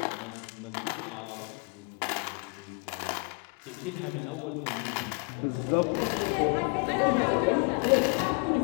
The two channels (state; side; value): quieter; right; 37.0 dB